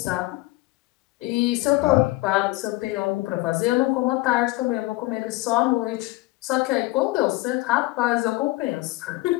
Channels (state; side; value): quieter; right; 20.1 dB